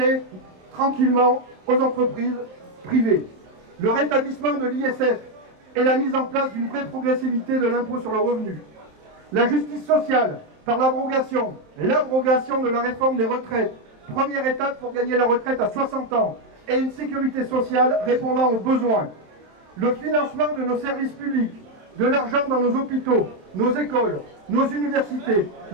tranquillement aux entreprises privées. Le rétablissement de l'ISF et la mise en place d'une vraie progressivité de l'impôt sur le revenu. La justice sociale, par l'abrogation de la réforme des retraites, première étape pour gagner la retraite à 60 ans, et une sécurité sociale répondant aux besoins. Le financement de nos services publics, de l'argent dans nos hôpitaux, nos écoles, nos universités,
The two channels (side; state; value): left; late; 27 ms